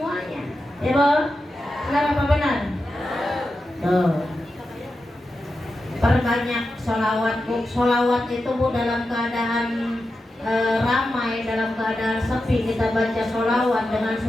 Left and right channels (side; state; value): both; normal; correlation 0.90